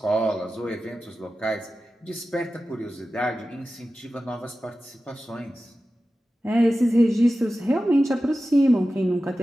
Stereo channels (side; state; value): both; normal; correlation 0.94